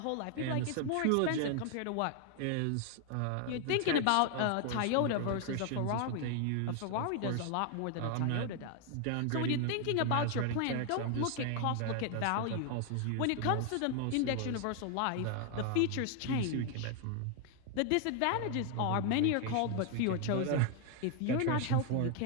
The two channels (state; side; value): different; both; correlation 0.01